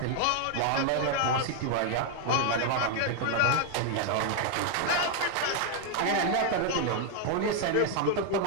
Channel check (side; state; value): both; different; correlation 0.00